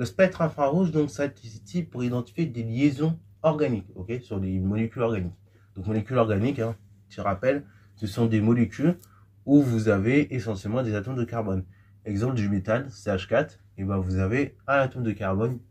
spectre infrarouge, donc, ça est ici pour identifier des liaisons organiques, ok, sur des molécules organiques. Donc, molécules organiques, hein, je rappelle, ce sont des molécules où vous avez essentiellement des atomes de carbone. Exemple du méthane, CH4, et ben vous avez un atome de carbone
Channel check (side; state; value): both; identical; correlation 1.00